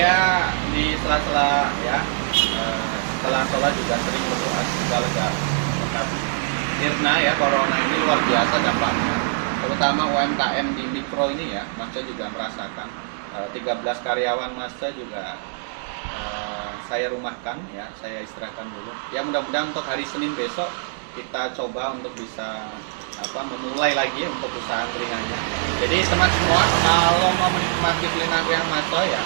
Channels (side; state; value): left; silent; 63 dB below the other